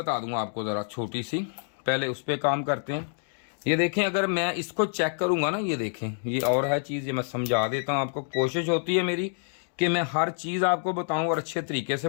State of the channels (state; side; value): silent; right; 60 dB below the other